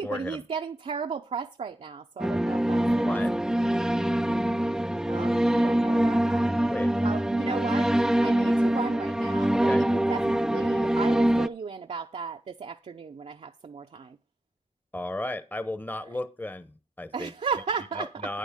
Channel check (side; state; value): both; normal; correlation 0.91